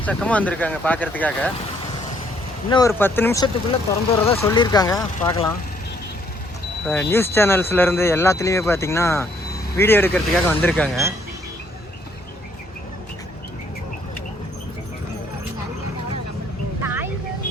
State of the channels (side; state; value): both; normal; correlation 0.67